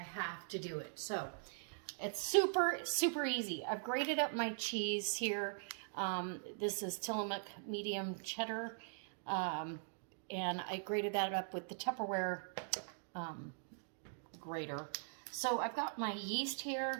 to do it. So it's super easy. I've grated up my cheese here. This is Tillamook medium cheddar, and I grated that up with the Tupperware grater. So I've got my yeast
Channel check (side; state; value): left; silent; digital silence